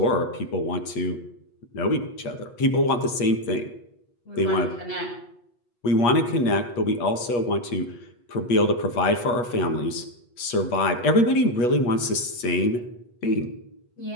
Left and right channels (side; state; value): right; late; 8.3 ms